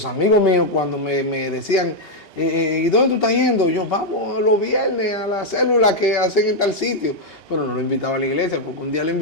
amigos míos cuando me decían, ¿y dónde tú estás yendo? Yo, vamos los viernes a la célula que hacen en tal sitio. Pero no lo invitaba a la iglesia, porque un día lo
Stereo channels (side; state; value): right; late; 2.8 ms